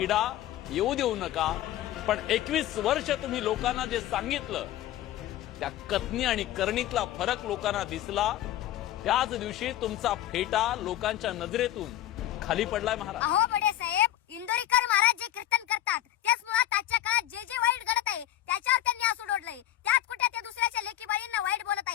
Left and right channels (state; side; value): quieter; right; 13.3 dB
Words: येऊ देऊ नका. पण 21 वर्ष तुम्ही लोकांना जे सांगितलं त्या कथनी आणि करणीतला फरक लोकांना दिसला. त्याच दिवशी तुमचा फेटा लोकांच्या नजरेतून खाली पडलाय महाराज. अहो बडे साहेब, इंदोरीकर महाराज जे कीर्तन करतात त्याच मुळात आजच्या काळात जे जे वाईट घडत आहे त्याच्यावर त्यांनी आसूड ओढलंय. त्यात कुठे ते दुसऱ्याच्या लेकी बाळींना वाईट बोलत